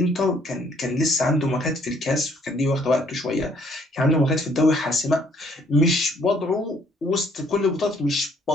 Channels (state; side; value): normal; both; correlation 0.64